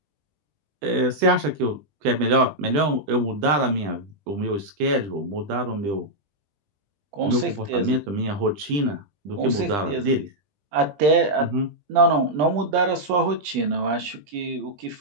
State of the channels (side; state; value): left; late; 20 ms